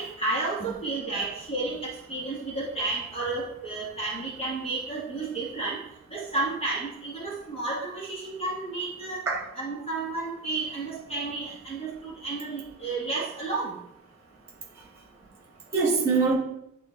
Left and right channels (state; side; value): quieter; left; 3.0 dB